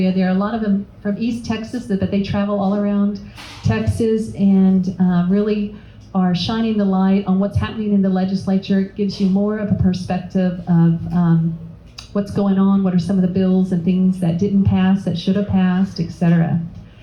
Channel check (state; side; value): identical; both; correlation 1.00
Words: There are a lot of them from East Texas, but they travel all around Texas and really are shining the light on what's happening in the legislature. It gives you more of a perspective of what's going on, what are some of the bills and things that didn't pass, that should have passed, etc.